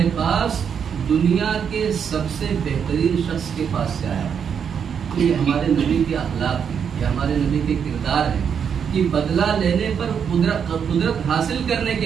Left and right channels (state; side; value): quieter; left; 7.4 dB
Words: پاس دنیا کے سب سے بہترین شخص کے پاس سے آیا۔ تو یہ ہمارے نبی کے اخلاق ہیں، یہ ہمارے نبی کے کردار ہیں کہ بدلہ لینے پر قدرت حاصل کرنے